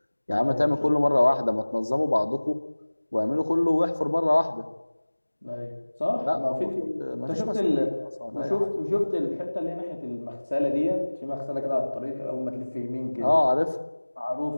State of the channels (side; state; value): both; inverted; correlation -1.00